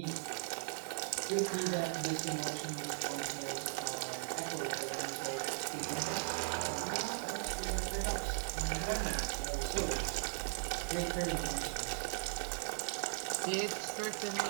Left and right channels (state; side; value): silent; left; 52 dB below the other